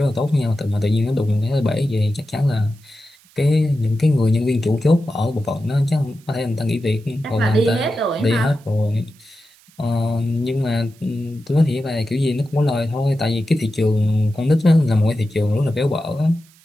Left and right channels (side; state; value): right; noise; hiss, 29 dB below the sound